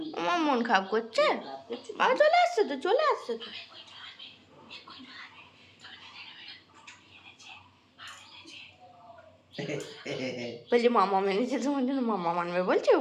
আমার মন খারাপ করছে? বাবা চলে আসছে তো, চলে আসছে তো। বলছি মামা মেনেছে তোমার জন্য, মামা মানবে বলছে।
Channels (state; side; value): identical; both; correlation 1.00